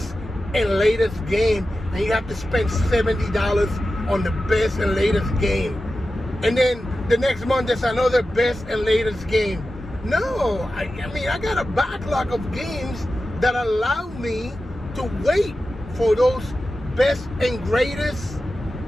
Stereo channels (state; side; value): normal; both; correlation 0.93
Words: and latest game, and you have to spend $70 on the best and latest game, and then the next month there's another best and latest game. No, I mean, I got a backlog of games that allow me to wait for those best and greatest